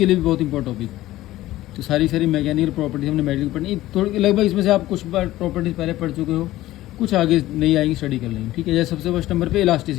लिए भी बहुत इंपॉर्टेंट टॉपिक। तो सारी मैकेनिकल प्रॉपर्टीज हमने मेडिकल पढ़नी थोड़ी, लगभग इसमें से आप कुछ बार प्रॉपर्टीज पहले पढ़ चुके हो, कुछ आगे नहीं आएंगी, स्टडी कर लेंगे, ठीक है। जैसे सबसे फर्स्ट नंबर पे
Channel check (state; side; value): quieter; right; 15.9 dB